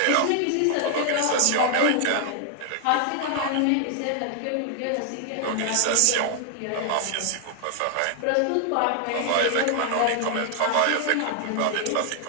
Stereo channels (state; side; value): different; both; correlation 0.00